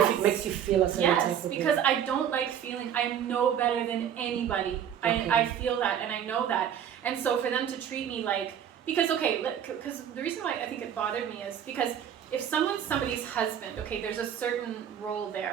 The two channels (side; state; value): left; quieter; 9.2 dB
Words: Yes. it makes you feel a certain type Yes, of because way? I don't like feeling I'm no better than anybody. Okay. I feel that and I know that. And so for them to treat me like, because because the reason why I think it bothered me is because if someone's somebody's husband, okay, there's a certain role